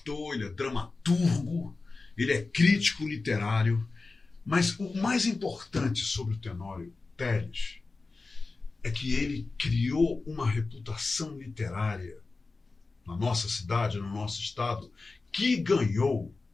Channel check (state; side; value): quieter; right; 3.8 dB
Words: ele é dramaturgo, ele é crítico literário. Mas o mais importante sobre o Tenório Teles é que ele criou uma reputação literária na nossa cidade, no nosso estado, que ganhou